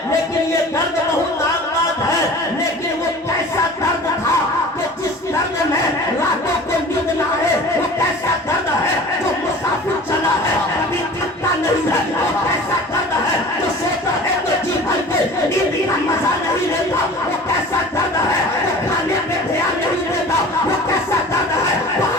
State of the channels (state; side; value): normal; both; correlation 0.41